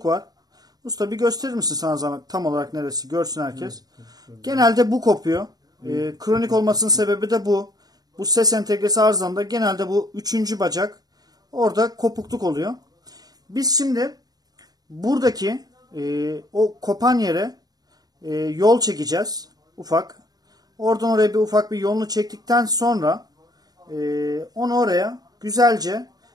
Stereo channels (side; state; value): left; late; 0.19 ms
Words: var. Usta bir gösterir misin sana zahmet tam olarak neresi? Görsün herkes. Genelde bu kopuyor. Kronik olmasının sebebi de bu. Bu ses entegresi arızamda genelde bu 3. bacak orada kopukluk oluyor. Biz şimdi buradaki o kopan yere yol çekeceğiz. Ufak. Oradan oraya bir ufak bir yolunu çektikten sonra onu oraya güzelce